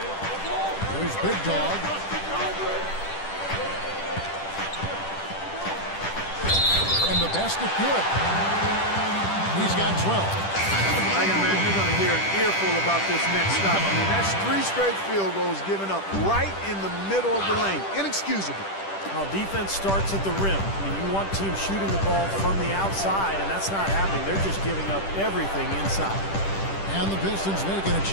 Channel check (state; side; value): late; right; 10 ms